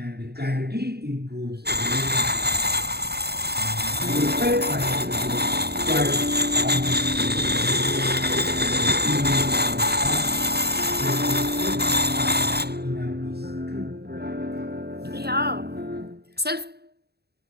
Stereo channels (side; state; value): left; late; 0.47 ms